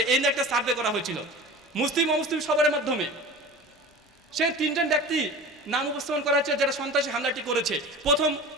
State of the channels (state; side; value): normal; both; correlation 0.36